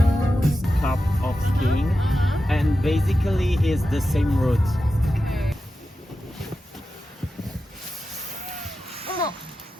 Cup of skiing, and basically is the same route.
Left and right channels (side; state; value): both; normal; correlation 0.91